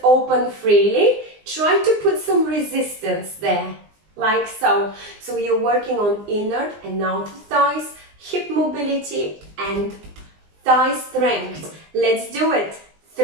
open freely. Try to put some resistance there, like so. So you're working on inner and outer thighs, hip mobility and thigh strength. Let's do it.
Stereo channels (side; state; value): left; late; 19 ms